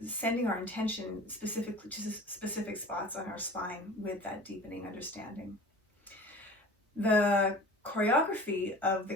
our intention specifically to specific spots on our spine with that deepening understanding. The choreography of the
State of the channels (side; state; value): both; normal; correlation 0.40